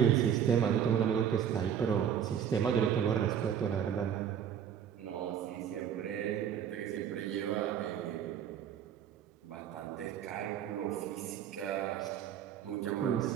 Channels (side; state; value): left; quieter; 8.8 dB